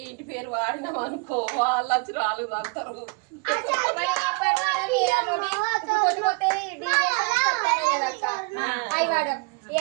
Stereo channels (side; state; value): left; quieter; 31.8 dB